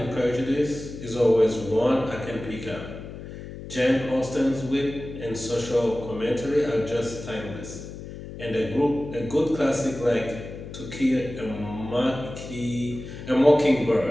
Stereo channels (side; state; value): left; noise; hum, 11 dB below the sound